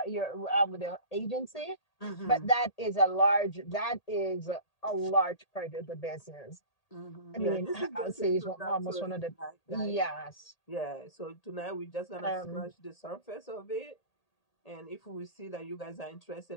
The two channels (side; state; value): right; late; 1.8 ms